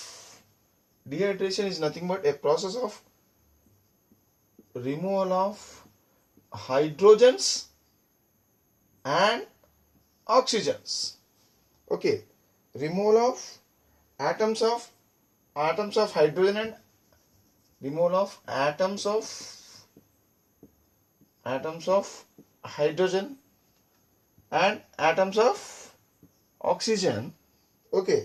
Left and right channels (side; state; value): both; identical; correlation 1.00